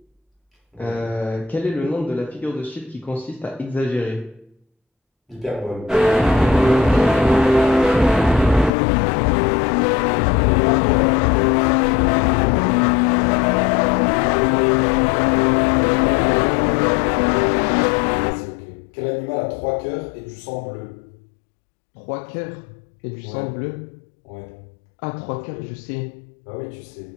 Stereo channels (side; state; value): right; drops out; at 8.7 s